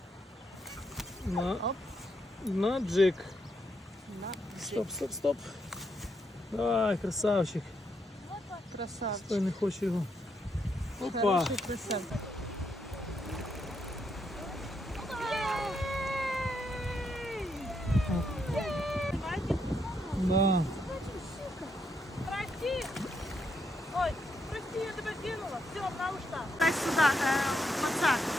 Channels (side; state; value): both; normal; correlation 0.78